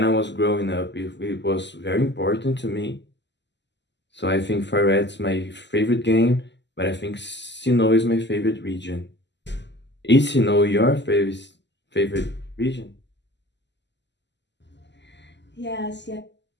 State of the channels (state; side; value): late; right; 0.51 ms